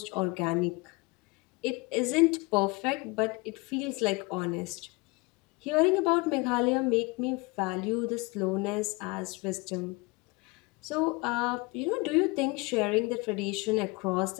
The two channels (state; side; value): quieter; right; 26.2 dB